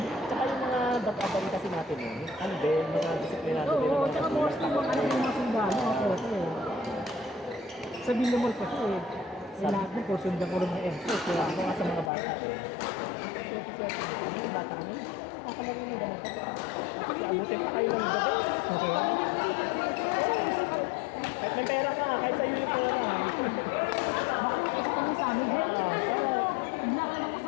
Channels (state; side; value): drops out; right; at 12.1 s